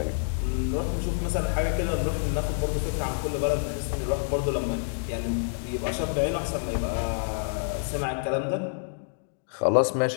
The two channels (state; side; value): silent; right; digital silence